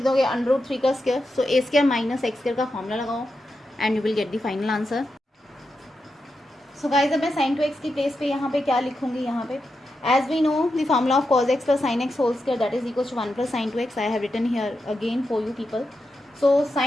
दोगे √3 का स्क्वायर. सो ए स्क्वायर माइनस एक्स स्क्वायर का फॉर्मूला लगाओ and you will get the final answer. So guys अब मैं sin 2x की प्लेस पे यहाँ पे क्या लिखूंगी, यहाँ पे as we know the formula of cos x plus sin x whole square that is equals to 1 plus sin 2x. I have written here again for you people. सो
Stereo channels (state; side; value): normal; both; correlation 0.87